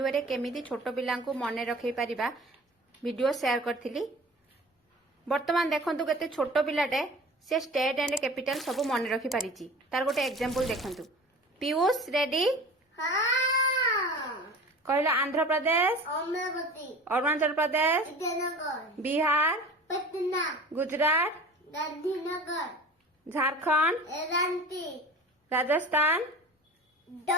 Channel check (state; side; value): normal; both; correlation 0.39